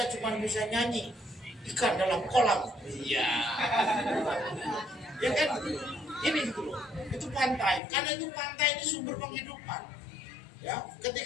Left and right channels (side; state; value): right; drops out; at 7.8 s